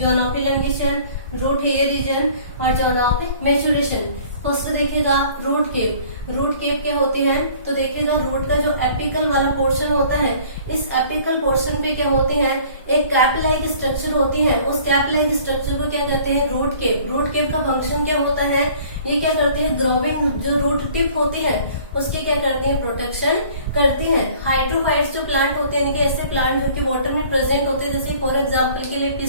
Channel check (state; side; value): inverted; both; correlation -0.52